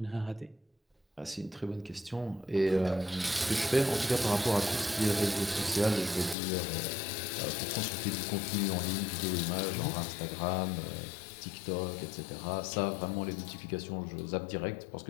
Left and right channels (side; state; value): right; drops out; at 6.4 s